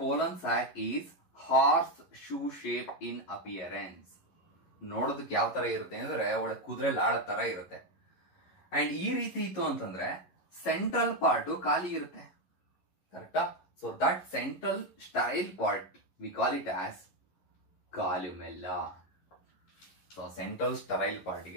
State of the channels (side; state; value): right; late; 11 ms